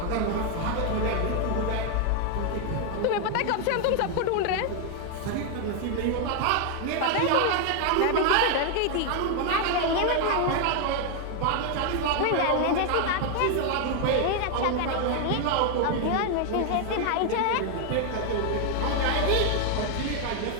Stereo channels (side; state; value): both; different; correlation 0.01